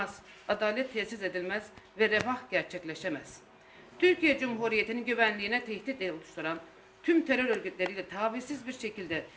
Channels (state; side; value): identical; both; correlation 1.00